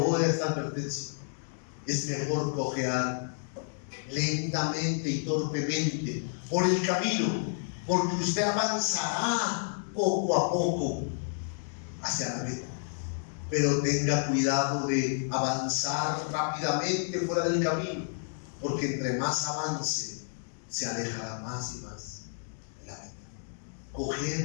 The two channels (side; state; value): right; silent; digital silence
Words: esta advertencia: es mejor cojear lentamente y torpemente por el camino, porque usted avanzará poco a poco hacia la meta. Pero tenga cuidado de avanzar rápidamente fuera del camino, porque entre más avance, se alejará más y más de la meta.